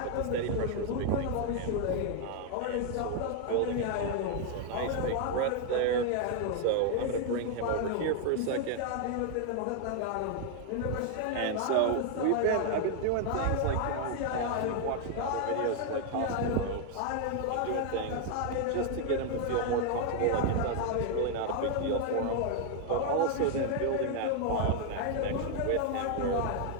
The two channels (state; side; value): different; both; correlation 0.00